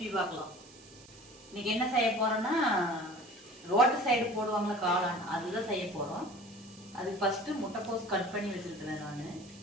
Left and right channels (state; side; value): noise; right; hiss, 21 dB below the sound